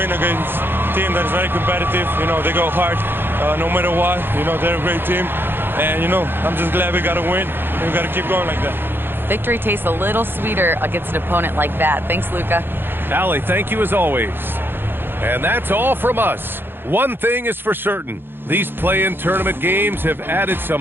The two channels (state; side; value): late; left; 0.10 ms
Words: against a team that is very competitive. You know, they go hard no matter what. You know, they're a great team. And, you know, I'm just glad we got to win. And we got to keep going like that. Victory tastes a little sweeter against an opponent like that. Thanks, Luka. Allie, thank you as always. And that's all from us. One thing is for certain. These play-in tournament games have added